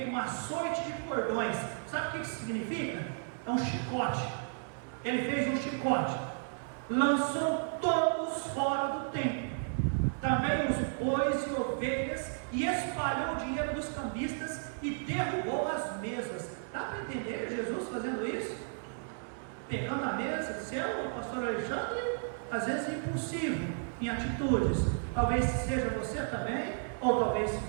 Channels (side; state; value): left; silent; digital silence